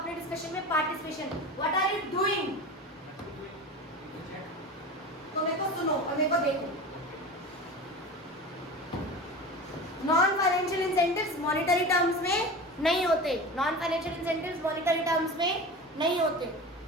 डिस्कशन में participation, what are you doing, तो मेरे को सुनो और मेरे को देखो। Non financial incentives monetary terms में नहीं होते, non financial incentives monetary terms में नहीं होते।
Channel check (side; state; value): both; normal; correlation 0.31